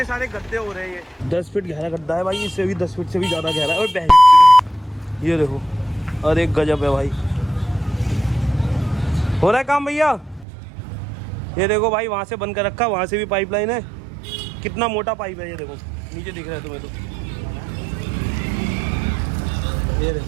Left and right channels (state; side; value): drops out; left; at 10.5 s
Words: सारे गड्ढे हो रहे हैं। 10 फीट गहरा गड्ढा है भाई, इससे भी 10 फीट से भी ज़्यादा गहरा है। और बहन ये देखो, अरे गजब है भाई। हो रहा है काम भैया। ये देखो भाई, वहाँ से बंद कर रखा, वहाँ से भी पाइपलाइन है। कितना मोटा पाइप है ये देखो, नीचे दिख रहा है तुम्हें तो। ये